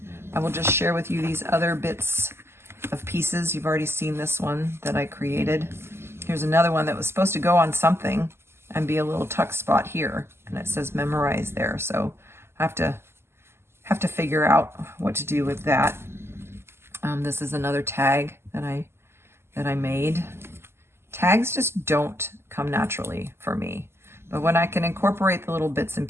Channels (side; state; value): left; late; 0.12 ms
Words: I will just share with you these other bits of pieces. You've already seen this one that I created. Here's another one that was supposed to go on something and be a little tuck spot here. And it says memorize there. So I have to figure out what to do with that. This is another tag that I made. Tags just don't come naturally for me. But when I can incorporate the little bits and